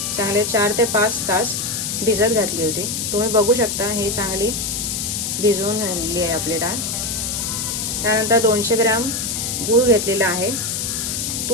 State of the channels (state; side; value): noise; left; hiss, 2 dB below the sound